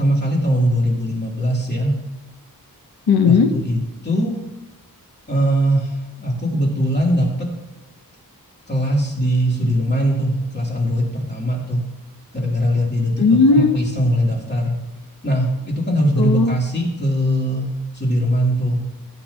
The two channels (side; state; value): both; normal; correlation 0.64